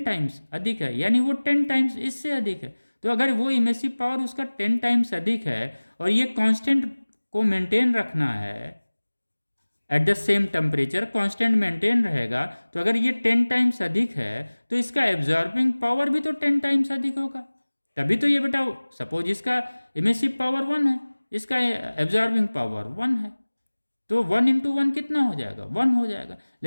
टाइम्स अधिक है, यानी वो 10 टाइम्स इससे अधिक है। तो अगर वो इमेसिव पावर उसका 10 टाइम्स अधिक है और ये कांस्टेंट को मेंटेन रखना है eight the same temperature, constant maintain रहेगा, तो अगर ये 10 टाइम्स अधिक है तो इसका एब्जॉर्बिंग पावर भी तो 10 टाइम्स अधिक होगा। तभी तो ये बेटा, सपोज इसका इमेसिव पावर 1 है, इसका एब्जॉर्बिंग पावर 1 है, तो 1 × 1 कितना हो जाएगा, 1 हो जाएगा।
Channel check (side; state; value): both; inverted; correlation -1.00